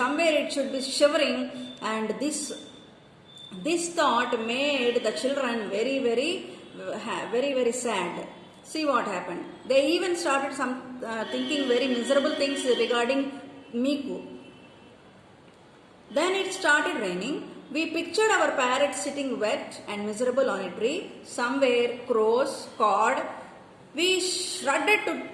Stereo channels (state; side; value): identical; both; correlation 1.00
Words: it should be shivering, and this thought made the children very, very sad. See what happened. They even started thinking very miserable things regarding Miku. Then it started raining. We pictured our parrot sitting wet and miserable on a tree. Somewhere crows cawed. We shuddered to